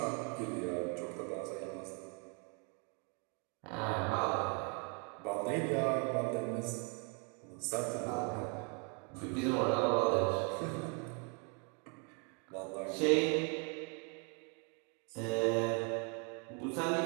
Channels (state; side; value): quieter; left; 36.0 dB